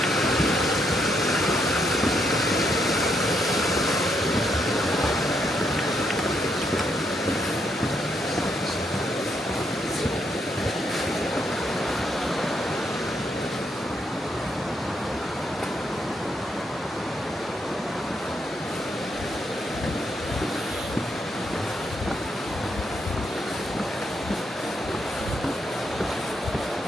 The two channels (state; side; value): normal; both; correlation 0.77